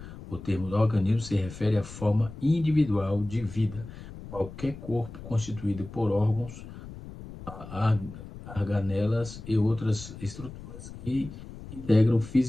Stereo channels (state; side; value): noise; left; rumble, 14 dB below the sound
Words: o termo organismo se refere à forma individual de vida. Qualquer corpo constituído por órgãos, organelas e outras estruturas que integram